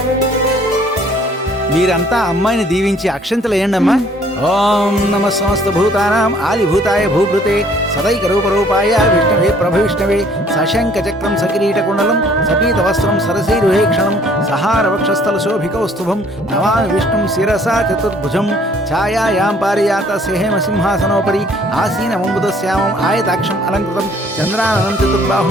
మీరంతా అమ్మాయిని దీవించి అక్షంతలు వేయండమ్మా. ఓం నమ సమస్త భూతానాం ఆదిభూతాయ భూభృతే సదైక రూపరూపాయ విష్ణవే ప్రభవిష్ణవే సశంక చక్రం సకిరీట కుండలం సపీత వస్త్రం సరసీరుహేక్షణం సహార వక్షస్థల శోభికౌస్తుభం నమామి విష్ణుం శిరసా చతుర్భుజం ఛాయాయాం పారియాత సేహేమ సింహాసనోపరి ఆసీనమంబుదశ్యామం ఆయతాక్షం అలంకృతం చంద్రాననం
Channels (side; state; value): both; normal; correlation 0.59